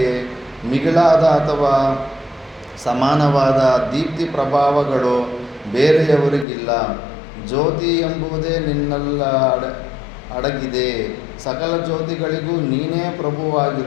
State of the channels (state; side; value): drops out; right; at 6.5 s